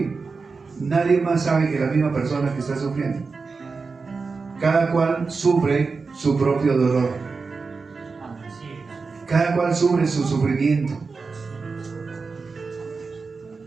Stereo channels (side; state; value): left; quieter; 4.5 dB